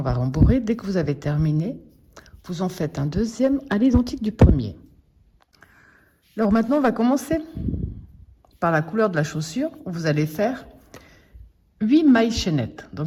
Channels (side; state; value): both; identical; correlation 1.00